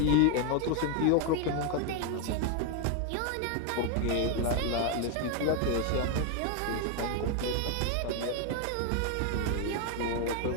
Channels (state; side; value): different; both; correlation 0.01